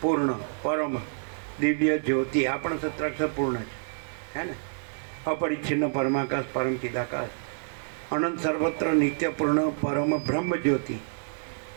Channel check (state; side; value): silent; left; digital silence